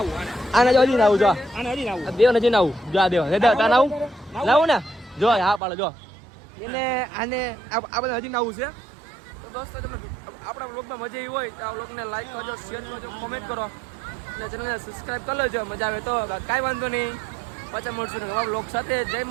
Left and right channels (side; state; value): left; drops out; at 5.6 s